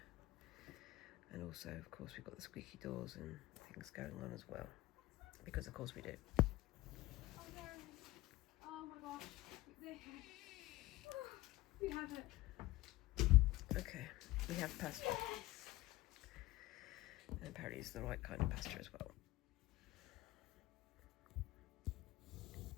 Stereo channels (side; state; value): right; quieter; 18.4 dB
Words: And also, of course, we've got the squeaky doors and things going on as well. Because, of course, we do. Oh, there. Oh my gosh. There. Oh, we have it. Okay, we have pasta. And apparently it's the right kind of pasta as well.